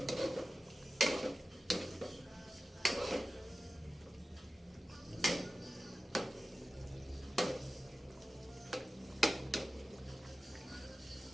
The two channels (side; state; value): both; normal; correlation 0.94